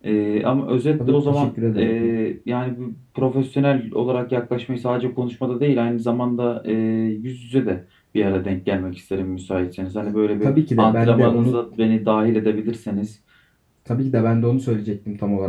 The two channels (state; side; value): identical; both; correlation 1.00